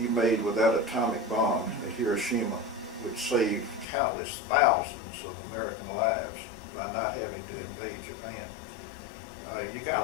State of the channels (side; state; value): right; drops out; at 3.9 s